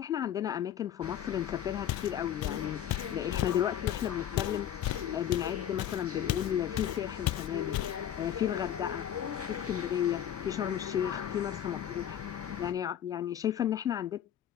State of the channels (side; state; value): right; quieter; 10.3 dB